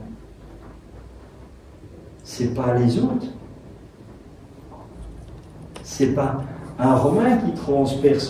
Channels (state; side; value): identical; both; correlation 1.00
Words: C'est pas les autres. C'est pas un Romain qui